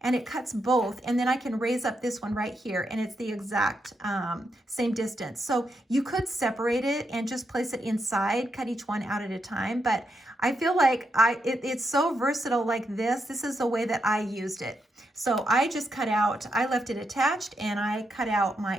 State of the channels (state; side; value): normal; both; correlation 0.82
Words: and it cuts both, and then I can raise up this one right here, and it's the exact same distance. So you could separate it and just place it inside, cut each one out at a time, but I feel like it's so versatile like this. This is the way that I used it. So I just cut out, I left it attached, and I cut out my